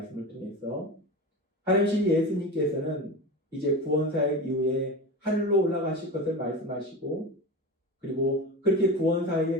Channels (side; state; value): both; normal; correlation 0.26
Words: 통해서 하나님 예수님께서는 이제 구원사역 이후에 하늘로 올라가실 것을 말씀하시고, 그리고 그렇게